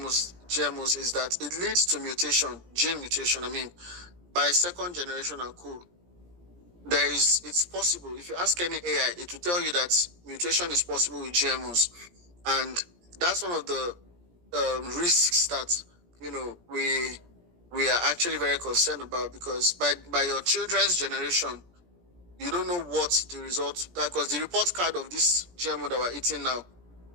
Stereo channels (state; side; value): late; left; 17 ms